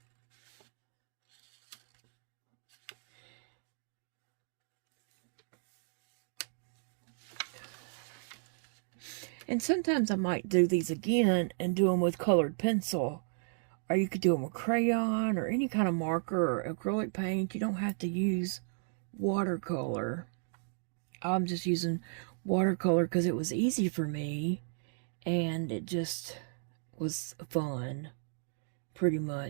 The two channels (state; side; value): silent; left; digital silence